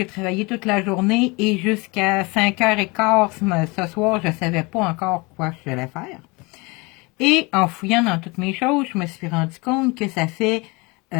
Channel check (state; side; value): quieter; right; 26.3 dB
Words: travaillé toute la journée et jusqu'à 5h15 ce soir, je ne savais pas encore quoi je devais faire. Et en fouillant dans toutes mes choses, je me suis rendu compte que ça fait